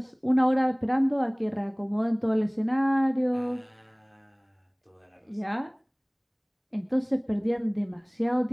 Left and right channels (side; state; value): both; identical; correlation 1.00